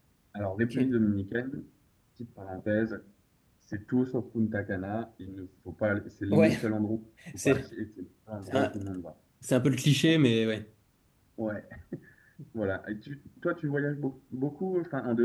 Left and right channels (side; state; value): both; identical; correlation 1.00